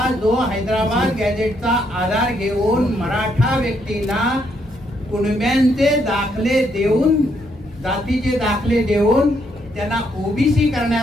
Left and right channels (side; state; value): both; normal; correlation 0.74